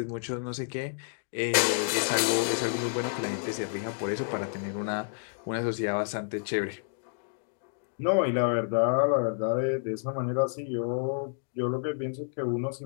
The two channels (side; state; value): right; silent; digital silence